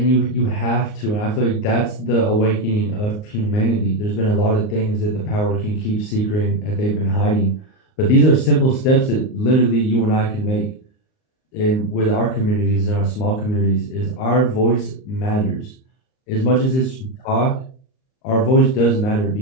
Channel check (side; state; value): right; late; 38 ms